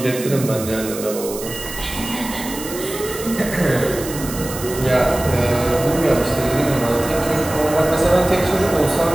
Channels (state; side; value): noise; right; hiss, 11 dB below the sound